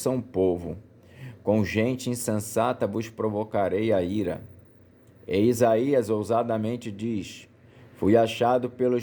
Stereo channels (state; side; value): identical; both; correlation 1.00